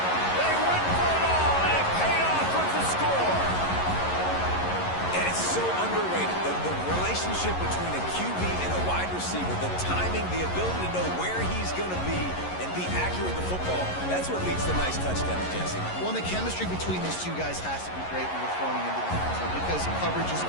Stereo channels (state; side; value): late; right; 11 ms